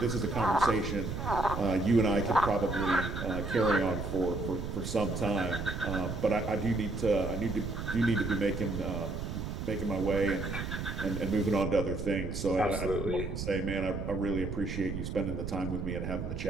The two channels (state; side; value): noise; right; rumble, 5 dB below the sound